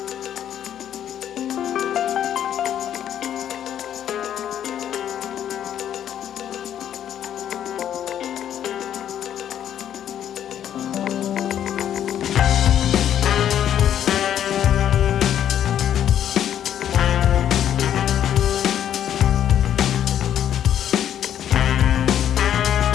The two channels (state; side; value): quieter; right; 10.2 dB